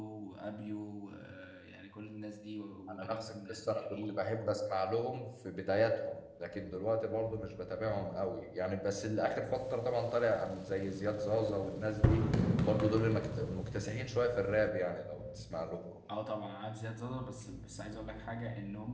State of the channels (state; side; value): identical; both; correlation 1.00